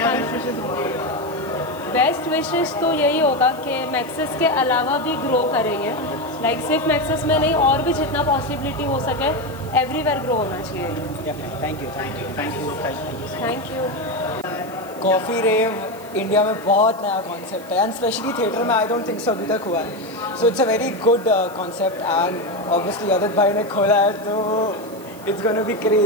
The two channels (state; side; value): noise; right; hiss, 21 dB below the sound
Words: बेस्ट विशेस होंगे? बेस्ट विशेस तो यही होगा कि मैक्सिस के अलावा भी ग्रो करेंगे, लाइक सिर्फ मैक्सिस में नहीं, और भी जितना पॉसिबिलिटी हो सके एवरीवेयर ग्रो होना चाहिए। Thank you. Coffee rave India में बहुत नया कॉन्सेप्ट है, एंड स्पेशली थिएटर में आई डोंट थिंक सो अभी तक हुआ है। So it's a very good concept, and obviously Aditya भाई ने खोला है तो it's gonna be